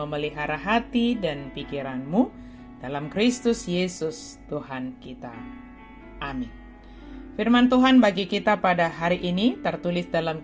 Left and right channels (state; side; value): identical; both; correlation 1.00